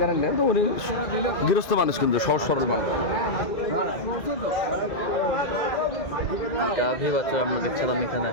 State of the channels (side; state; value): right; late; 2.0 ms